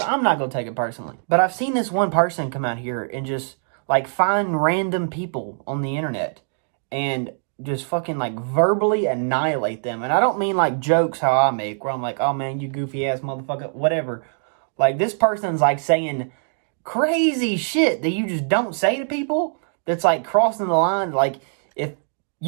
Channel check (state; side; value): silent; left; digital silence